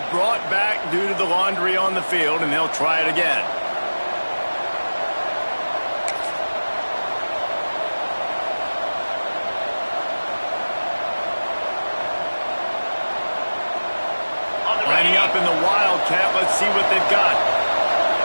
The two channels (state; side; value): inverted; both; correlation -1.00